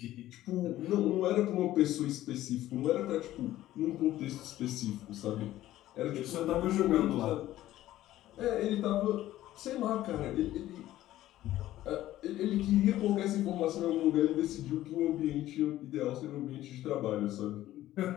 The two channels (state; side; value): quieter; right; 14.4 dB